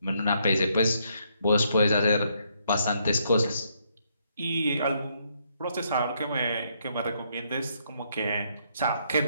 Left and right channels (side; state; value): both; inverted; correlation -0.73